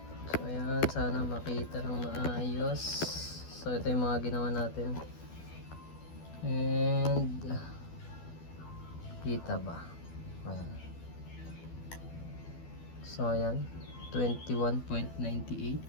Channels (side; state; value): right; late; 12 ms